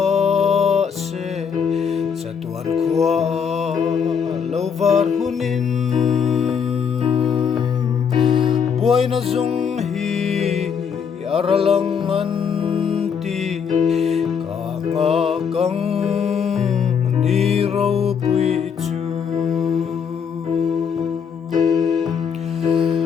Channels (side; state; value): right; quieter; 6.9 dB